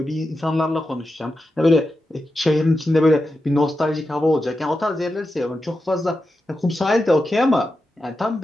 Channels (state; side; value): normal; both; correlation 0.89